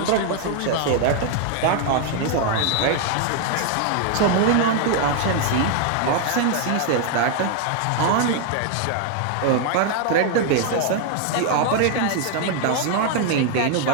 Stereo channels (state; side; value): different; both; correlation 0.00